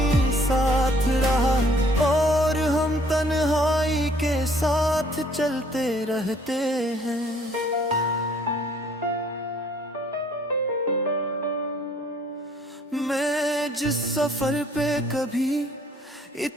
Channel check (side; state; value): both; normal; correlation 0.60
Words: साथ रहा, और हम तन्हाई के साथ चलते रहते हैं। मैं जिस सफर पे कभी